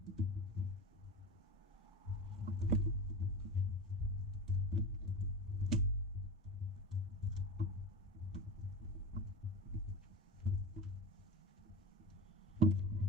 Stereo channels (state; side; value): normal; both; correlation 0.27